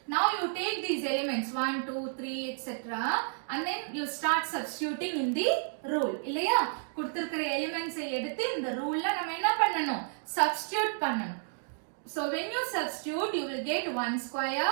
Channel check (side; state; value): left; silent; digital silence